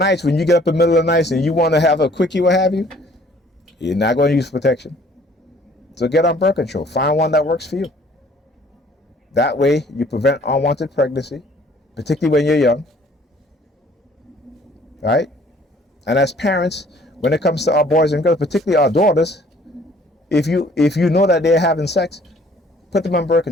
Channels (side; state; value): both; normal; correlation 0.57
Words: when you get up in the middle of the night and you want to have a quickie, what have you, you're not going to use protection. So get on birth control. Find one that works for you. That way you prevent unwanted pregnancy, particularly when you're young. Right? And as parents, when it comes to our boys and girls, particularly our daughters, if you know that they're having sex, put them on birth